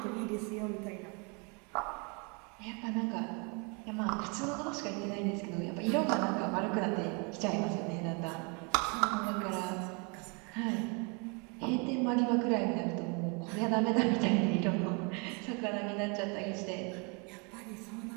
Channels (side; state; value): left; quieter; 33.2 dB